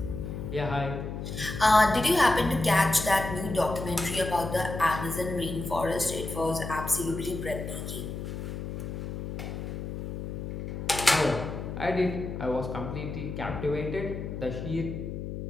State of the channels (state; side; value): noise; left; hum, 6 dB below the sound